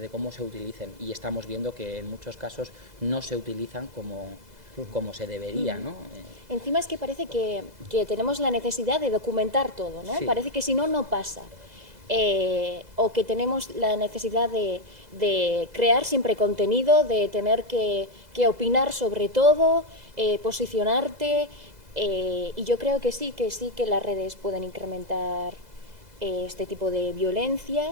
de cómo se utilicen y estamos viendo que en muchos casos no se utilizan como se debería, ¿no? Encima es que parece que tenemos la necesidad de documentar todo, ¿no? Sí. Parece que si no, no pasa. O que tenemos la necesidad de crear siempre contenido, de tener que opinar sobre todo, posicionarte, y yo creo que sí que las redes pueden incrementar este tipo de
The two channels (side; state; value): left; late; 2.0 ms